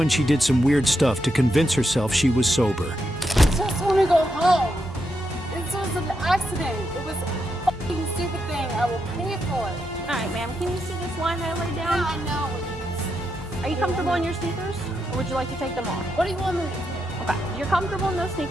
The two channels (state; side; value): normal; both; correlation 0.83